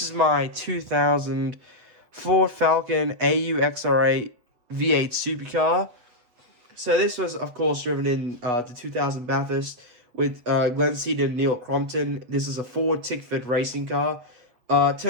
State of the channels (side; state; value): left; late; 8.1 ms